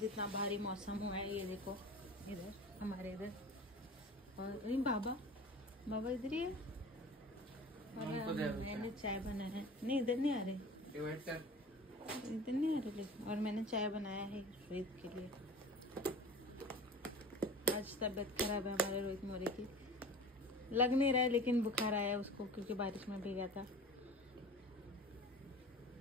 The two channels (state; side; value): normal; both; correlation 0.38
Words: इतना भारी मौसम हुआ है, ये देखो इधर हमारे इधर। और बाबा बाबा इधर ही है। और मैंने चाय बनाया है, नहीं इधर नहीं आ रहे, इधर नहीं आ रहे लेकिन। और मैंने चाय बनाया है रोहित के लिए। आज तबीयत खराब है हमारे रोहित मोरे की, लग नहीं रहा है लेकिन बुखार आया उसको क्योंकि बारिश में भीगा था।